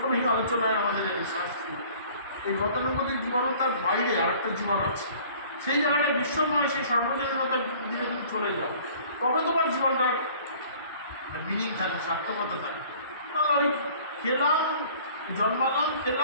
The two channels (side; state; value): both; inverted; correlation -0.50